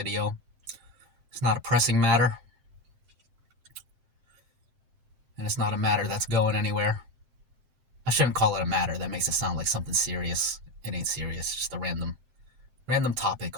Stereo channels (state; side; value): late; left; 7.6 ms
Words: It's not a pressing matter. And it's not a matter that's going anywhere. I shouldn't call it a matter. That makes it sound like something serious. It ain't serious. It's just a random